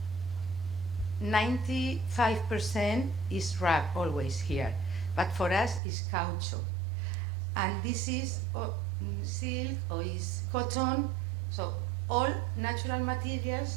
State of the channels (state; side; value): drops out; left; at 5.8 s